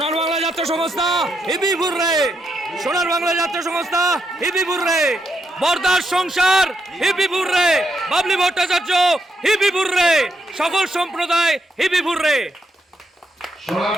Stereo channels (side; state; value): both; normal; correlation 0.80